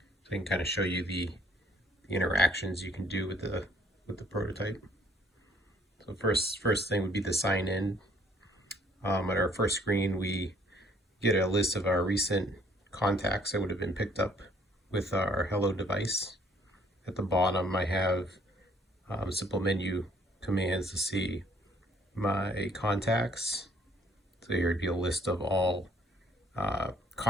I can kind of show you the interactions you can do with the prototype. So first thing would be the sign in. At our first screen, we get a list of our recent contacts that would have been picked up with our Hello device. At the bottom, I have simple menu commands to see my contacts. So here would be a list of all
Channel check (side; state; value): both; normal; correlation 0.61